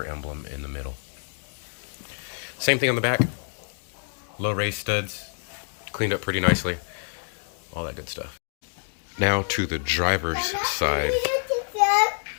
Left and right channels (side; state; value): right; silent; 60 dB below the other